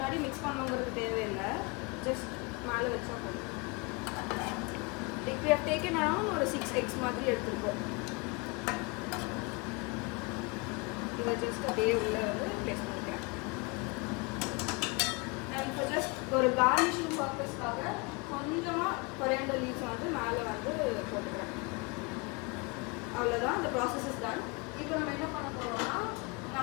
மிக்ஸ் பண்ணுங்கிறது தேவையில்லை. ஜஸ்ட் மேலே வச்சா போதும். Like we have taken around ஒரு 6 eggs மாதிரி எடுத்துருக்கோம். இதை ஜஸ்ட் அப்படியே உள்ளே வந்து ப்ளேஸ் பண்ணிக்கிறேன். அண்ட் இப்போ ஜஸ்ட் ஒரு கார்னிஷிங் பர்பஸ்க்காக கொஞ்சமாக கொரியாண்டர் லீவ்ஸ் வந்து மேலே வந்து போட்டுக்கிறேன். அவ்வளோதான். இந்த ப்ராசஸ் இஸ் டன். இப்போ நம்ம என்ன பண்ண போகிறோம்னா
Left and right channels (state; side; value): quieter; right; 29.1 dB